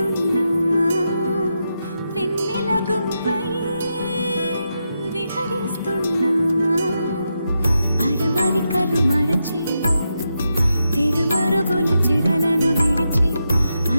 వెన్నెల గువ్వై విహరిస్తున్నా. అరమరికలు మరచి తెరమరుగుల చెరలను విడిచి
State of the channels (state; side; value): inverted; both; correlation -0.86